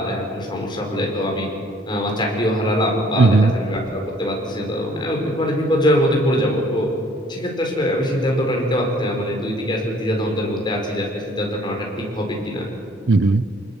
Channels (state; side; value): normal; both; correlation 0.59